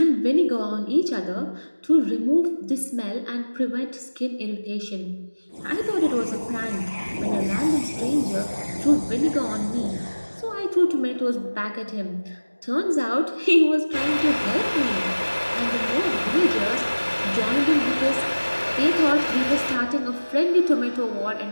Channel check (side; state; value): both; inverted; correlation -1.00